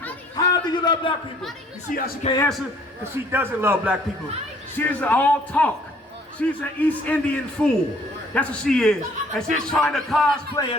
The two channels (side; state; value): both; normal; correlation 0.59